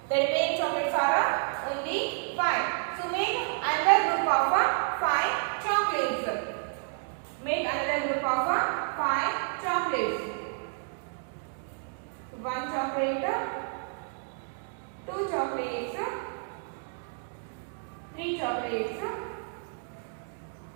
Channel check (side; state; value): left; silent; 58 dB below the other